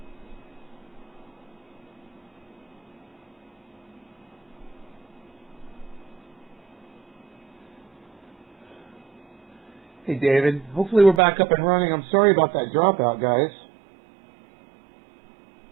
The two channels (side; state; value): left; drops out; at 11.2 s